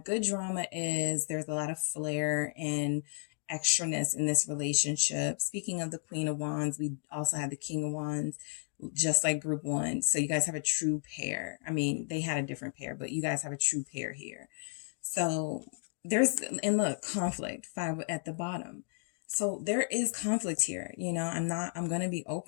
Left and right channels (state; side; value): silent; right; 56 dB below the other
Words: Good drama is there's a lot of flair and extraness in this relationship. Speaking of the Queen of Wands, we also have the King of Wands, just like group 1. So you guys have a true pair. I mean, they had a different pair, but you guys have a true pair here. So there's, and look, conflict, 5 at the bottom. So there is conflict here. You know, I'm going to be